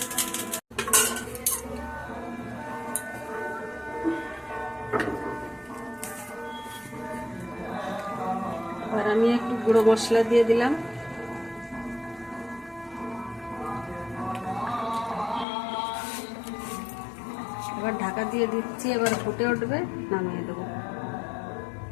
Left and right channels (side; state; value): right; drops out; at 15.5 s